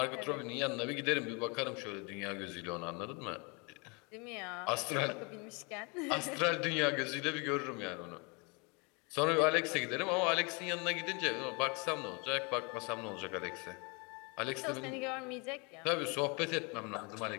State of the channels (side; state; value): right; quieter; 31.1 dB